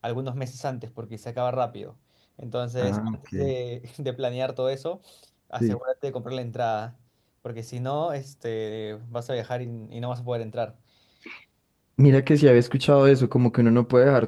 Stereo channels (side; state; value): both; identical; correlation 1.00